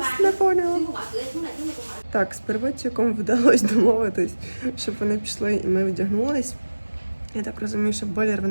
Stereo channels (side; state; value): both; inverted; correlation -1.00